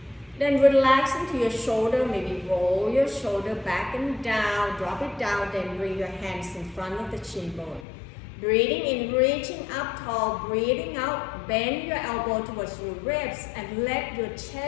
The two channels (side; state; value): right; drops out; at 7.9 s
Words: Then relax into your shoulder, maybe roll your shoulder back and down, drop it down, then bring your hands in front of the chin bone. Breathing in, reaching up tall, breathing out, bend your elbow towards your ribs and let your